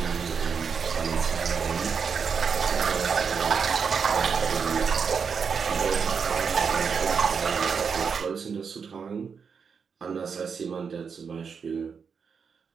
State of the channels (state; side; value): quieter; left; 6.1 dB